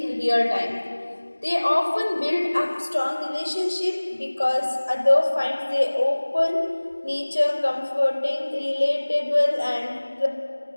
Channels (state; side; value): inverted; both; correlation -1.00